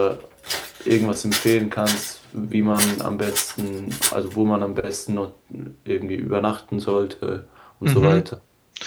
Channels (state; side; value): identical; both; correlation 1.00